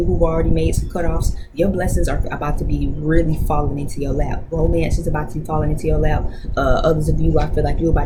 who've already made some cutoffs, your blessings are about to be really falling into your lap. Romance is about to be falling into your lap. Others of you, I feel like you're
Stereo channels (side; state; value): both; identical; correlation 1.00